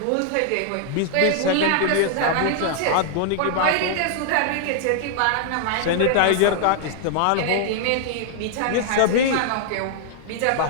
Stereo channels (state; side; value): different; both; correlation -0.01